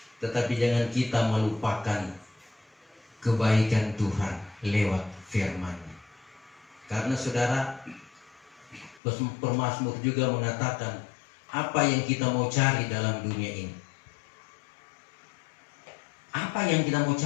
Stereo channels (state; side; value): drops out; right; at 9.0 s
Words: tetapi jangan kita melupakan kebaikan Tuhan lewat firman-Nya. Karena saudara, pemazmur juga mengatakan, apa yang kita mau cari dalam dunia ini? Apa yang kita mau